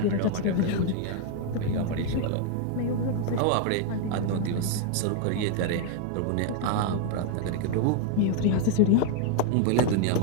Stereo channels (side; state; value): both; different; correlation 0.00